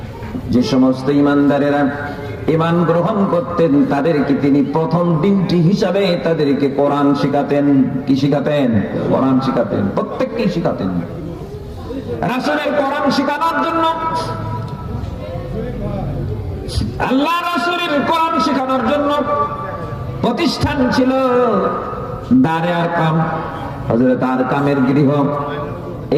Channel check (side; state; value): both; identical; correlation 1.00